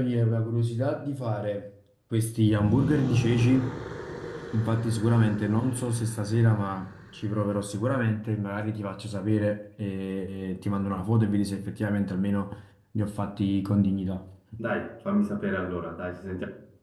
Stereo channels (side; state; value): both; identical; correlation 1.00